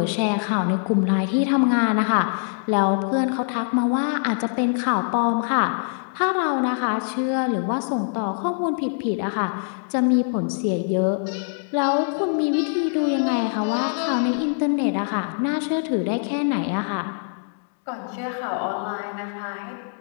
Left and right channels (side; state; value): right; silent; digital silence